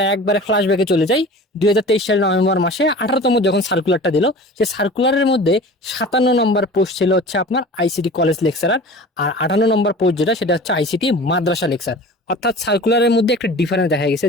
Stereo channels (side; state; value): both; normal; correlation 0.39